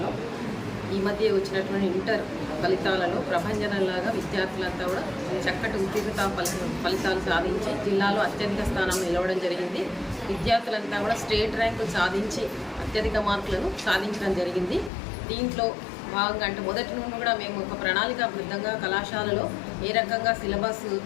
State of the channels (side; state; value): right; drops out; at 14.9 s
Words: ఈ మధ్య వచ్చినటువంటి ఇంటర్ ఫలితాలలో ప్రభంజనంలాగా విద్యార్థులంతా కూడా చక్కటి ఉత్తీర్ణత ఫలితాలు సాధించి జిల్లాలో అత్యధిక స్థానం నిలవడం జరిగింది. విద్యార్థులంతా కూడా స్టేట్ ర్యాంకులు సాధించి అత్యధిక మార్కులను సాధించడం జరిగింది. దీంట్లో భాగంగా అంటే మొదటి నుండి కూడా మేము ఒక ప్రణాళికాబద్ధంగా కళాశాలలో ఏ రకంగా సిలబస్